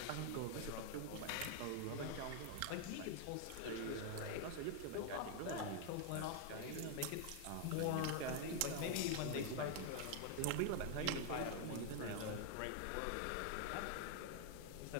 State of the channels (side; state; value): both; different; correlation 0.00